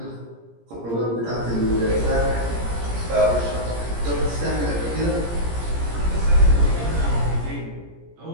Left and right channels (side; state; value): left; late; 17 ms